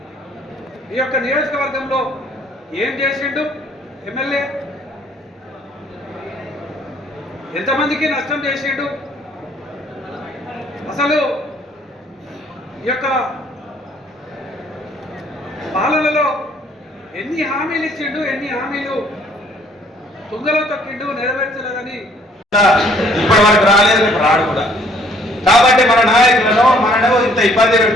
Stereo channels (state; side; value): normal; both; correlation 0.62